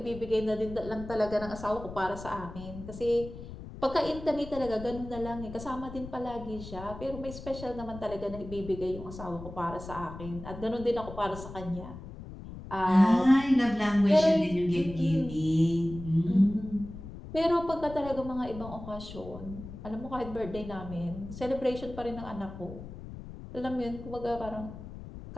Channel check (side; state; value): left; noise; rumble, 12 dB below the sound